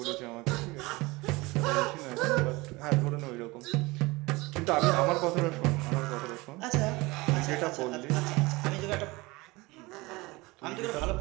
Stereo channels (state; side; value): quieter; left; 22.8 dB